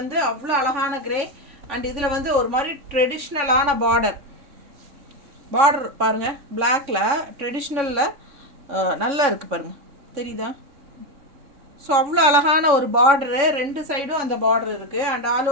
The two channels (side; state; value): left; late; 3.6 ms